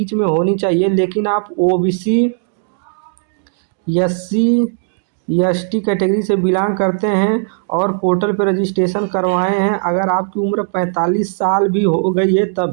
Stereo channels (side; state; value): left; silent; digital silence